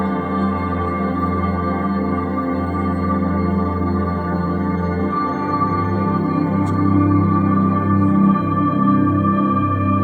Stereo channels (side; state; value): both; identical; correlation 1.00